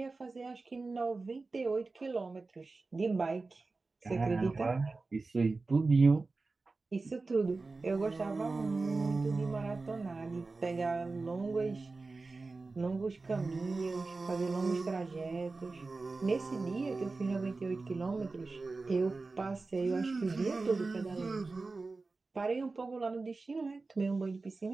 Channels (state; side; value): quieter; left; 3.7 dB